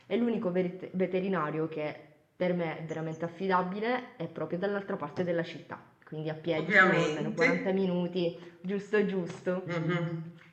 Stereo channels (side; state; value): both; identical; correlation 1.00